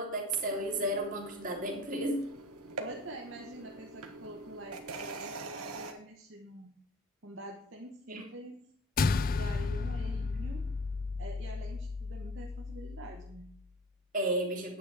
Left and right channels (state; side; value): normal; both; correlation 0.42